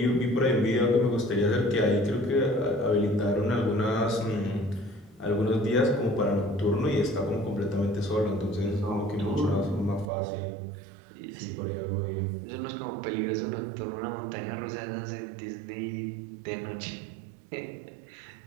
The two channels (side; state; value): left; drops out; at 10.1 s